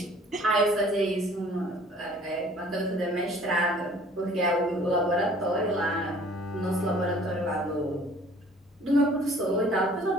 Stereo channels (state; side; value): normal; both; correlation 0.53